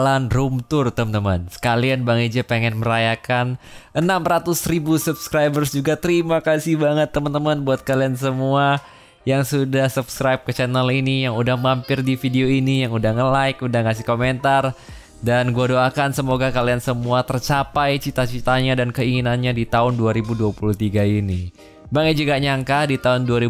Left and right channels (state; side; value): identical; both; correlation 1.00